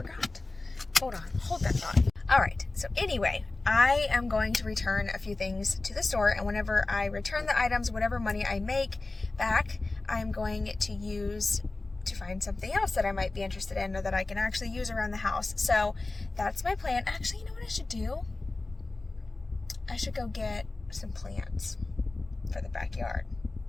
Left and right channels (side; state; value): right; quieter; 3.2 dB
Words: Hold on, hold that thought. Alright, so anyway, I am going to return a few things to the store, and whenever I return the items, whatever money I make back, I'm going to use to find something else that I might be interested in or that I can actually use around the house. So that's my plan. Actually, you know what I should do? I should go get some plants for the backyard.